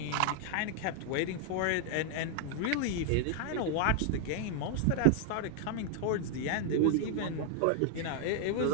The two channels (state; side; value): different; both; correlation 0.00